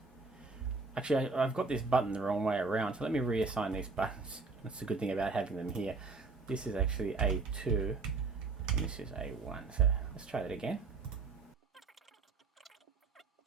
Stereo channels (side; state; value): left; quieter; 4.1 dB